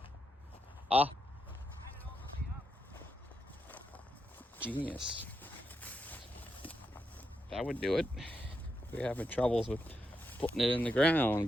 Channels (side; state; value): both; normal; correlation 0.84